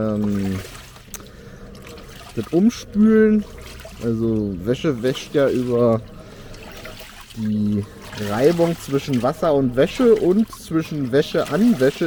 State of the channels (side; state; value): both; identical; correlation 1.00